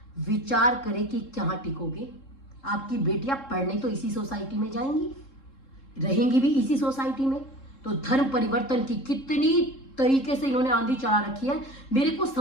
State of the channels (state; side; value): late; right; 3.7 ms